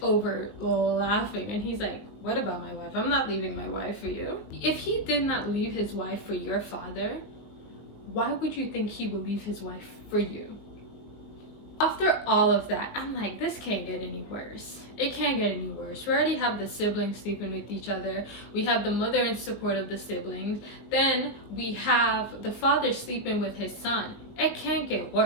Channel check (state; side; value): late; right; 20 ms